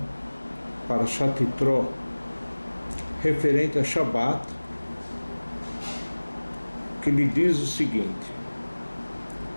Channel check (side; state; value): both; inverted; correlation -1.00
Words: Parashat Yitro, referente a Shabbat, que lhe diz o seguinte: